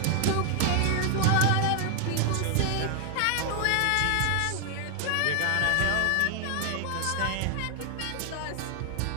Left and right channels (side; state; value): both; different; correlation 0.00